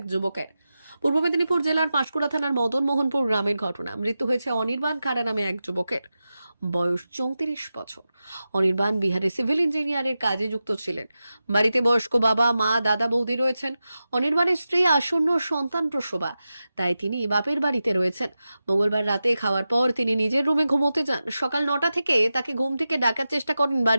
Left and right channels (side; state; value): both; inverted; correlation -0.92